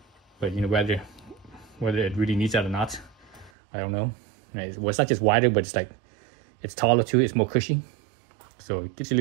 But you know, whether it really needs that or not, I don't know. Well, it's not just wider, but it's like it's taller too. It's more cushy, so it gives you a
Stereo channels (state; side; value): drops out; left; at 3.5 s